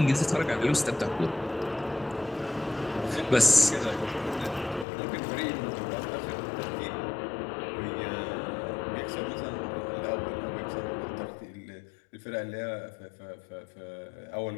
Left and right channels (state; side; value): drops out; right; at 4.9 s